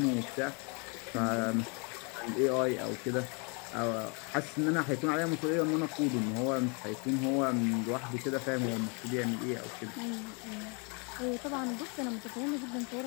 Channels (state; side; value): quieter; right; 34.4 dB